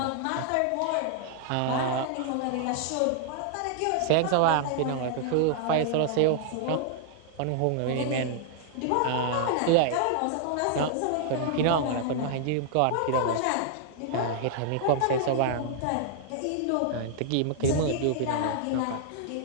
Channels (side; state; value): both; different; correlation -0.01